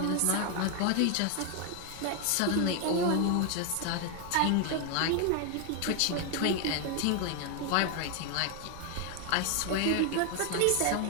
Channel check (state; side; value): different; both; correlation 0.01